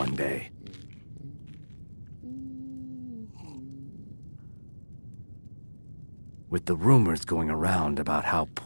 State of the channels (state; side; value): inverted; both; correlation -1.00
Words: day. With the rumors going around about how